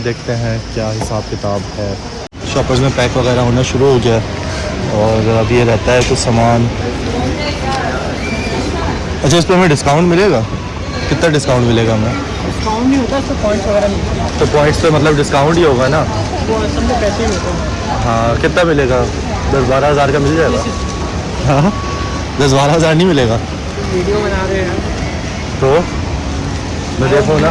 देखते हैं क्या हिसाब किताब है। शॉपर्स में पैक वगैरह होना शुरू हो गया और अब ये रहता है कुछ सामान। अच्छा, इस पर हमें डिस्काउंट मिलेगा? कितना डिस्काउंट मिलेगा हमें? डिस्काउंट नहीं होता, इससे पॉइंट्स वगैरह मिलते हैं। तो पॉइंट्स पे मतलब डिस्काउंट ही होगा ना? वो असल में पैसे ही होते हैं। हाँ, कितना मिलेगा? 10-12 हज़ार का मिल जाएगा? हाँ, 10-12 हज़ार नहीं मिलेगा? वीडियो बना रहे हैं तो मैं देखूँ ना,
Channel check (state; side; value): identical; both; correlation 1.00